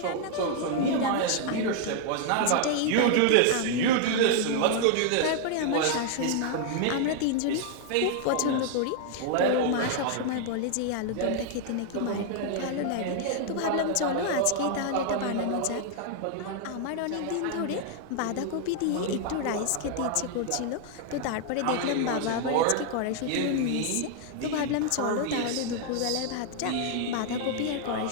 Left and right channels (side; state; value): both; different; correlation 0.00